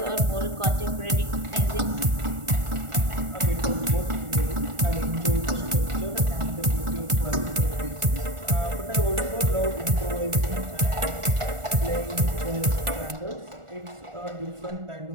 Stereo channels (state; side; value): late; left; 1.4 ms